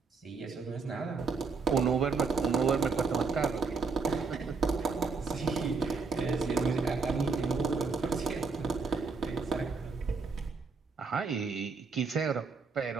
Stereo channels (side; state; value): left; quieter; 4.6 dB